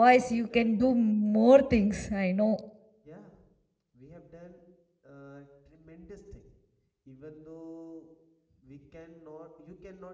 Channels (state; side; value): identical; both; correlation 1.00